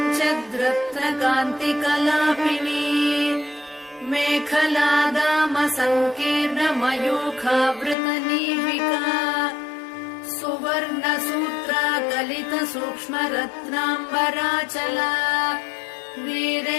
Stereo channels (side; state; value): right; drops out; at 8.0 s